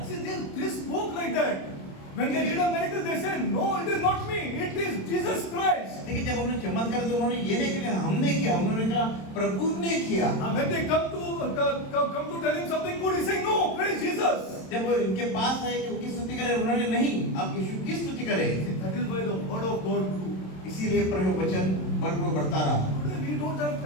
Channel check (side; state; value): right; late; 27 ms